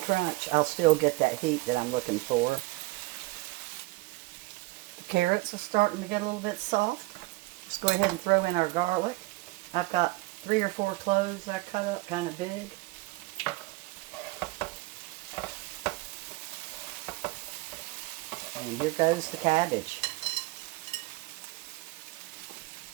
I'll still get that heat that I'm looking for. The carrots are starting to get a little bit soft. Let's go ahead and throw in our garlic. I've got 3 or 4 cloves I cut up kind of big. And here goes the cabbage.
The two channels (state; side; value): quieter; left; 22.1 dB